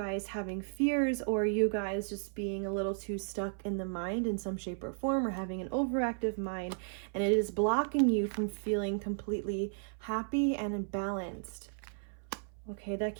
having fears or you guys just being a little too stuck in the mind in some shape or form, or having an overactive mind, and it is blocking you from feeling completely happy and balanced. Okay, that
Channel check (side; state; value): left; silent; 55 dB below the other